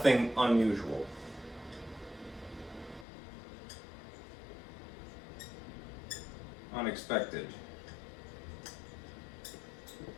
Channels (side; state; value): right; drops out; at 3.1 s